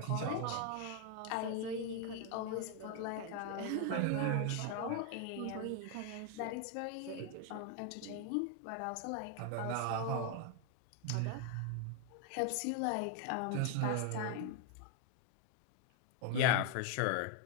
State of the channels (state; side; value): different; both; correlation 0.01